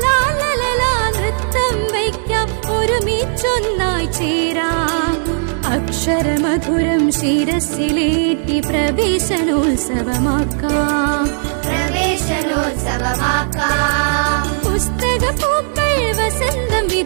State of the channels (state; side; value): silent; left; digital silence